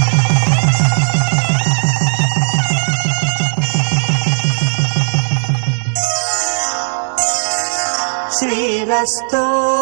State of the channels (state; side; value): silent; left; digital silence